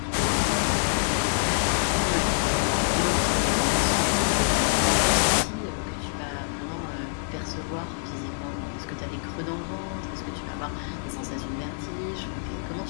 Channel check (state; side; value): silent; right; digital silence